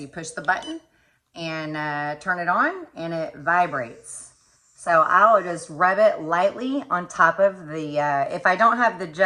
push the button and turn it on, and it vibrates. So I'll just rub it lightly on top of the, if I don't have the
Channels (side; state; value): both; identical; correlation 1.00